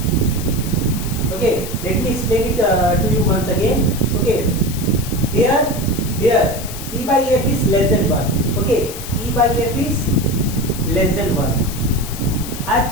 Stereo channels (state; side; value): noise; left; hiss, 11 dB below the sound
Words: Okay, let me explain it to you once again. Okay, here e by f is less than 1. Okay, e by f is less than 1. I have